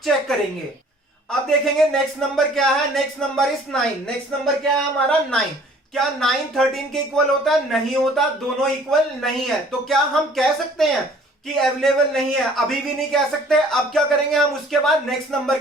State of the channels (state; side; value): normal; both; correlation 0.54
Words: चेक करेंगे। अब देखेंगे नेक्स्ट नंबर क्या है। Next number is 9। Next number क्या है हमारा? 9। क्या 9 13 के इक्वल होता है? नहीं होता, दोनों इक्वल नहीं है। तो क्या हम कह सकते हैं कि अवेलेबल नहीं है? अभी भी नहीं कह सकते। अब क्या करेंगे हम? उसके बाद नेक्स्ट नंबर